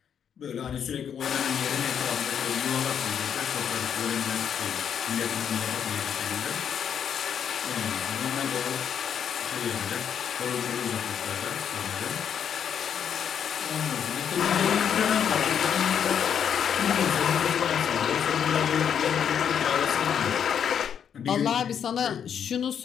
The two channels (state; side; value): quieter; right; 8.2 dB